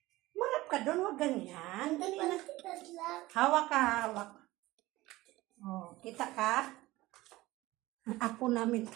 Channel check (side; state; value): left; quieter; 18.5 dB